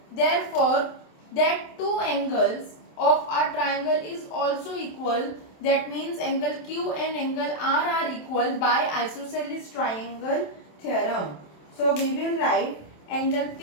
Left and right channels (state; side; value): late; right; 27 ms